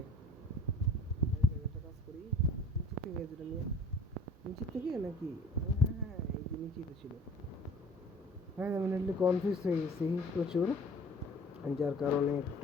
একটা কাজ করি নিচে থেকে যেটা নিয়ে নিচে থেকে নাকি হ্যাঁ এই যে নিচেই তো ছিল হ্যাঁ আমি নেটলি কনফিউজ হয়ে গেছি প্রচুর যার কারণে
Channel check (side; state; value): both; normal; correlation 0.49